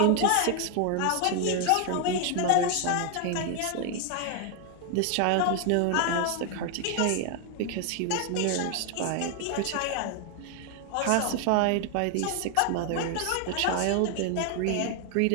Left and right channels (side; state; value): both; different; correlation 0.00